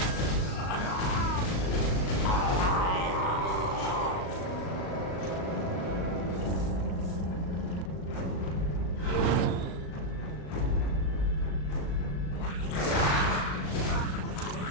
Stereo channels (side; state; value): right; late; 38 ms